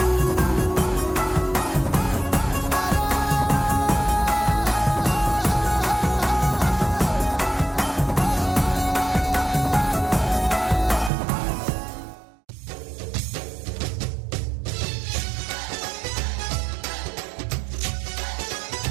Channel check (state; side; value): drops out; left; at 11.1 s